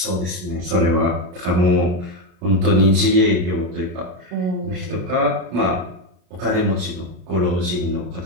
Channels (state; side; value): late; left; 33 ms